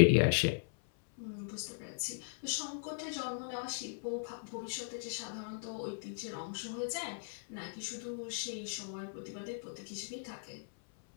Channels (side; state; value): right; silent; 53 dB below the other